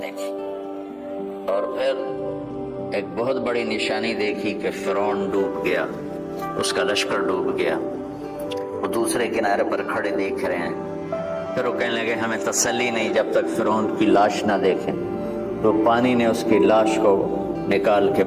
دیکھی۔ اور پھر ایک بہت بڑی نشانی دیکھی کہ فرعون ڈوب گیا، اس کا لشکر ڈوب گیا، وہ دوسرے کنارے پر کھڑے دیکھ رہے ہیں۔ پھر وہ کہنے لگے ہمیں تسلی نہیں جب تک فرعون کی لاش نہ دیکھیں، تو پانی نے اس کی لاش کو نکال کے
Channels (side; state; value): both; identical; correlation 1.00